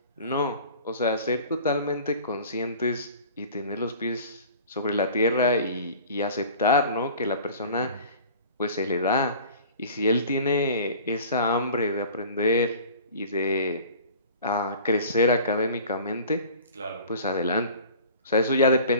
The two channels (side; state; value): both; inverted; correlation -0.44